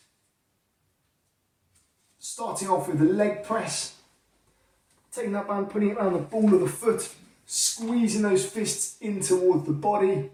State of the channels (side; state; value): both; identical; correlation 1.00